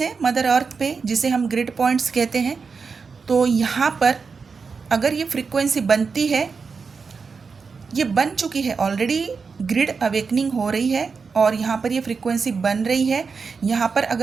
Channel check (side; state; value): left; quieter; 5.2 dB